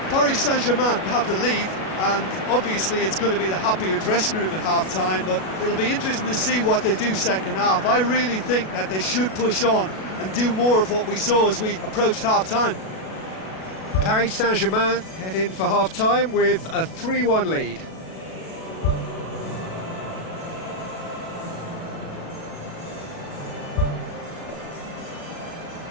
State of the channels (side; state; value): right; late; 37 ms